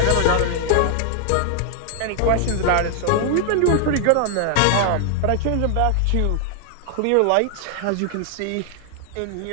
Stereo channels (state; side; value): different; both; correlation 0.00